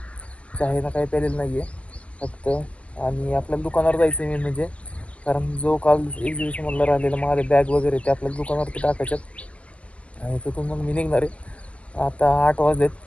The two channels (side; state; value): right; late; 0.062 ms